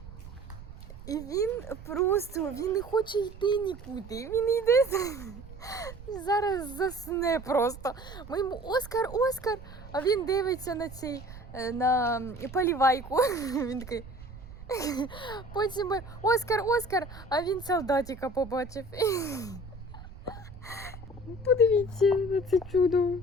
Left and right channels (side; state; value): right; noise; rumble, 15 dB below the sound